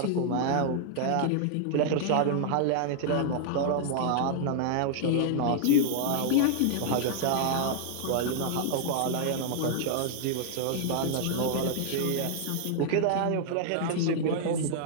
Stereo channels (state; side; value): different; both; correlation -0.01